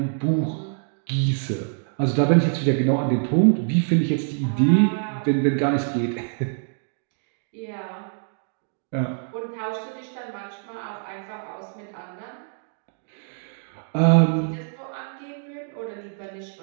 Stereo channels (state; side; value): silent; left; 61 dB below the other